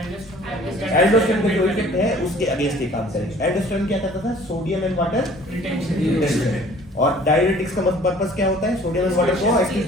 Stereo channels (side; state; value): both; normal; correlation 0.52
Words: एल्डोस्टेरोन का जो इफेक्ट है उसके अगेंस्ट ये काम करेगा। एल्डोस्टेरोन क्या करता था, सोडियम एंड वाटर रिटेंशन, और डायरेटिक्स का पर्पस क्या होता है, सोडियम एंड वाटर को एक्टिव